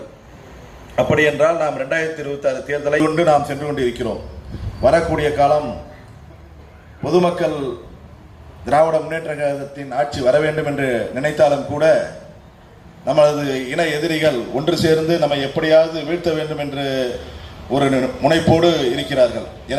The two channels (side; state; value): both; identical; correlation 1.00